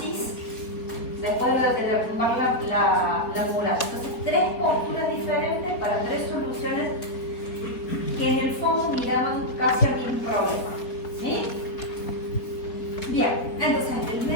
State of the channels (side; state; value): right; late; 4.1 ms